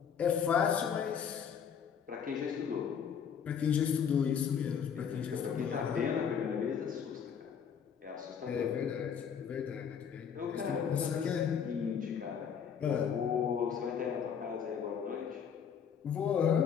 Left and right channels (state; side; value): quieter; right; 7.4 dB